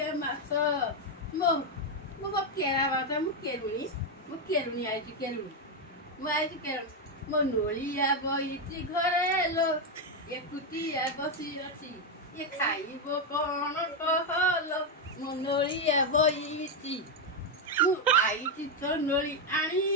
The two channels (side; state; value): both; normal; correlation 0.04